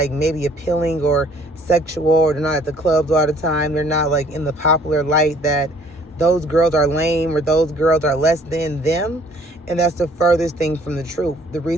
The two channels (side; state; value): both; normal; correlation 0.58